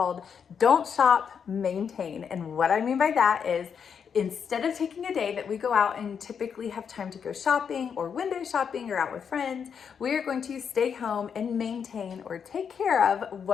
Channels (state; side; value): quieter; right; 7.0 dB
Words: Don't Shop, Maintain. And what I mean by that is instead of taking a day that we go out and typically have time to go shopping or window shopping or out with friends, we are going to stay home and maintain or take care of